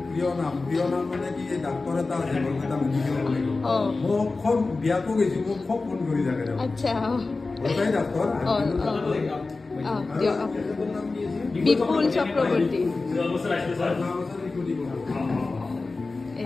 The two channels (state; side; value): quieter; right; 3.7 dB